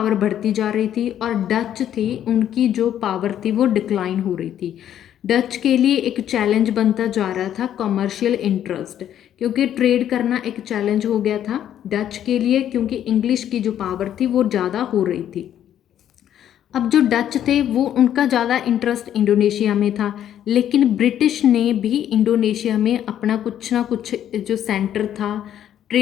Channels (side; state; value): right; quieter; 10.6 dB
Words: बढ़ती जा रही थी, और डच थी, उनकी जो पावर थी वो डिक्लाइन हो रही थी। डच के लिए एक चैलेंज बनता जा रहा था कमर्शियल इंटरेस्ट, क्योंकि ट्रेड करना एक चैलेंज हो गया था डच के लिए, क्योंकि इंग्लिश की जो पावर थी वो ज़्यादा हो रही थी। अब जो डच थे वो उनका ज़्यादा इंटरेस्ट इंडोनेशिया में था, लेकिन ब्रिटिश ने भी इंडोनेशिया में अपना कुछ ना कुछ जो सेंटर था,